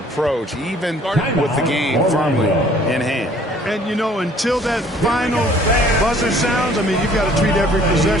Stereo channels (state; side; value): normal; both; correlation 0.56